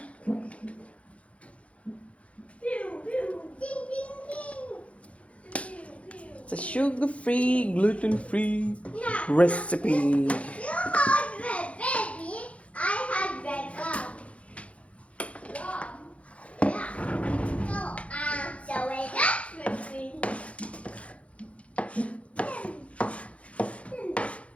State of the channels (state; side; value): late; right; 0.063 ms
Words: It's a sugar-free, gluten-free recipe.